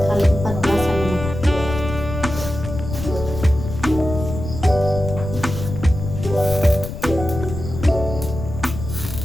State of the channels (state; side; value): noise; left; rumble, 7 dB below the sound